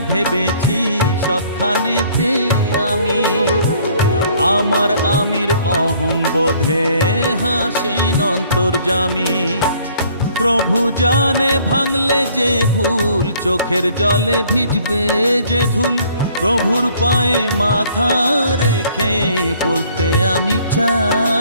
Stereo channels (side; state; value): both; inverted; correlation -0.59